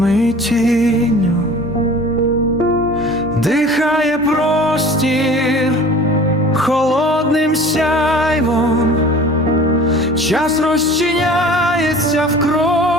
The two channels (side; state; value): both; normal; correlation 0.44